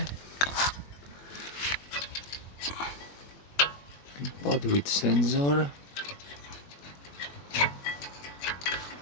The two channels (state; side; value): late; right; 21 ms